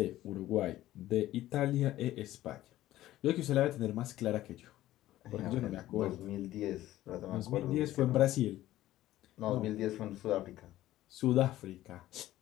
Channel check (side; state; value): right; quieter; 14.8 dB